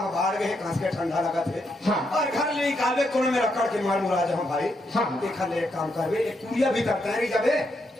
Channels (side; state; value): both; normal; correlation 0.79